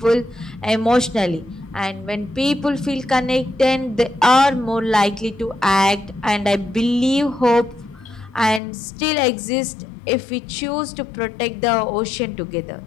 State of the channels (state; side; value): drops out; right; at 8.6 s